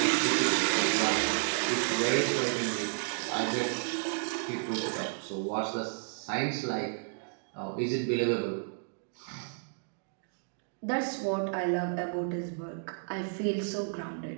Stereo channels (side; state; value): left; silent; digital silence